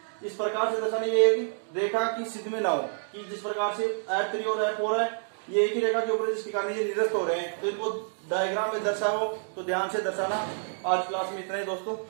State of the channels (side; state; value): left; silent; digital silence